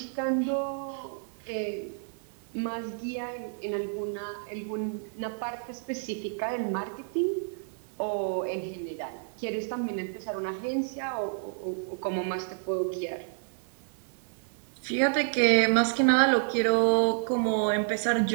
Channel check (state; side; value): silent; left; digital silence